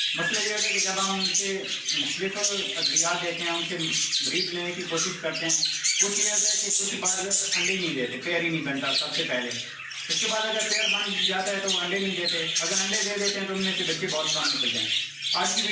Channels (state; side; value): identical; both; correlation 1.00